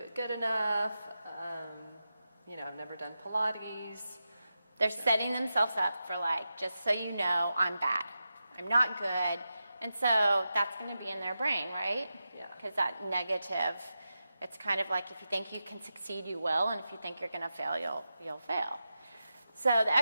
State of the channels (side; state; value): both; inverted; correlation -0.90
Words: good enough, I've never done Pilates. They're setting themselves up for just so you know, I'm bad, I'm not good, and so that's going to be in their brain, right? Yeah. Because that negative, it's kind of like if you think you can succeed, you will, and if you think you're going to fail, you'll fail. So the